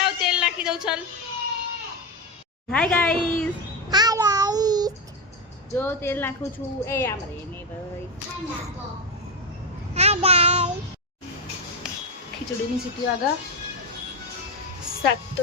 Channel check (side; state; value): both; normal; correlation 0.10